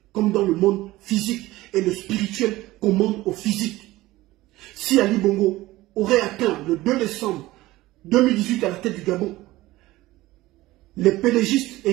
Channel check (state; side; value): quieter; left; 17.9 dB